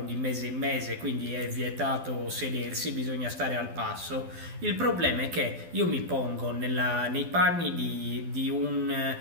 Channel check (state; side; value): late; left; 12 ms